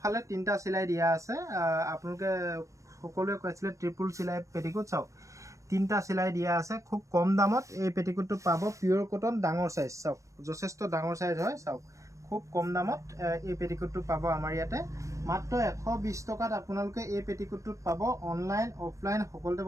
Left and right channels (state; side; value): late; left; 0.15 ms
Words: তিনিটা চিলাই দিয়া আছে। আপোনালোকে সকলোৱে কৈছিলে ট্ৰিপুল চিলাই পেটিকোট চাওক তিনিটা চিলাই দিয়া আছে। খুব কম দামত এই পেটিকোটটো পাব। পিয়ৰ কটন ডাঙৰ সাইজ চাওক যথেষ্ট ডাঙৰ সাইজ হয়। চাওক খুব কম দামত এই পেটিকোটটো পাব আমাৰ ইয়াতে মাত্ৰ 120 টকাত আপোনালোকে এই পেটিকোটটোত পাব। অনলাইন অফলাইন সকলোতে